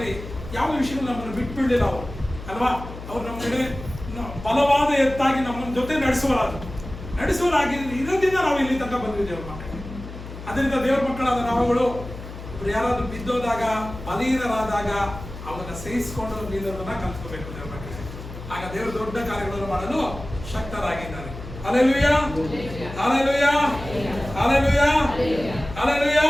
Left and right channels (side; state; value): left; noise; hum, 12 dB below the sound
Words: ಯಾವ ವಿಷಯಗಳು ನಮ್ಮನ್ನು ಬಿಟ್ಬಿಡಲಿಲ್ಲ ಅವರು ಅಲ್ವಾ? ಅವ್ರು ನಮ್ಮ ಕಡೆ ಬಲವಾದ ಎತ್ತಾಗಿ ನಮ್ಮ ಜೊತೆ ನಡೆಸುವರಾಗಿ ಇರೋದ್ರಿಂದ ನಾವು ಇಲ್ಲಿ ತನಕ ಬಂದ್ವಿ ದೇವ್ರ ಮಕ್ಕಳಿಗೆ. ಅದರಿಂದ ದೇವ್ರ ಮಕ್ಕಳಾದ ನಾವುಗಳು ಯಾರಾದ್ರೂ ಬಿದ್ದೋದಾಗ, ಬಲಹೀನರಾದಾಗ ಅವನ್ನ ಸಹಿಸಿಕೊಂಡು ನಿಲ್ಲೋದನ್ನ ಕಲ್ತ್ಕೋಬೇಕು ದೇವ್ರ ಮಕ್ಕಳಿಗೆ. ಆಗ ದೇವರು ದೊಡ್ಡ ಕಾರ್ಯಗಳನ್ನು ಮಾಡಲು ಶಕ್ತರಾಗಿದ್ದಾರೆ. Hallelujah, hallelujah, hallelujah, hallelujah,